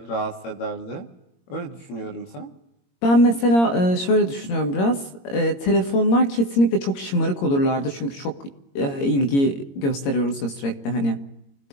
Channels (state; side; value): late; right; 22 ms